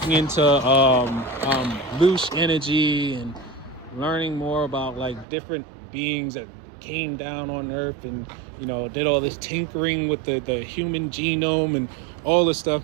into loose energy and learning more about like different beings that came down on Earth and did all this tinkering with the human genome and all this stuff.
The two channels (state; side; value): drops out; left; at 5.2 s